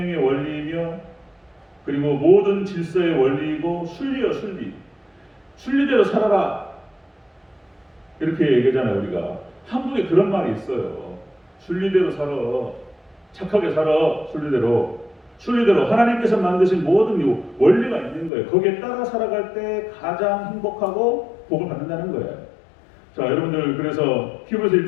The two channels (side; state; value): right; drops out; at 18.3 s